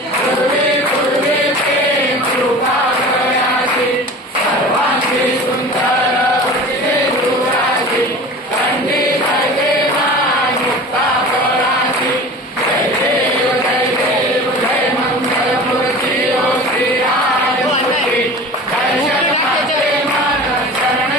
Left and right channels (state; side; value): normal; both; correlation 0.37